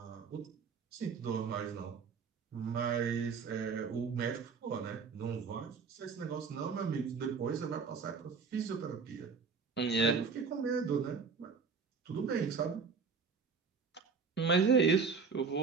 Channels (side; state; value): left; quieter; 5.4 dB